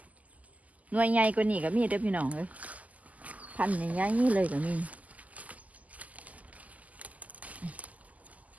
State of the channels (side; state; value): left; late; 0.075 ms